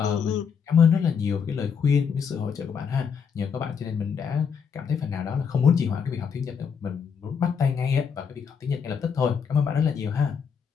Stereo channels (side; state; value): right; quieter; 6.6 dB